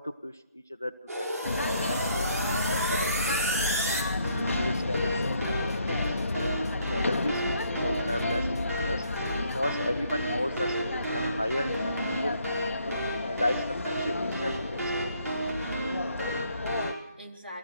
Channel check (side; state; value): both; inverted; correlation -0.68